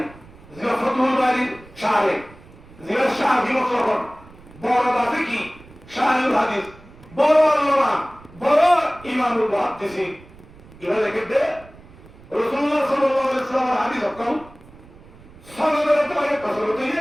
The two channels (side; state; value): right; noise; rumble, 22 dB below the sound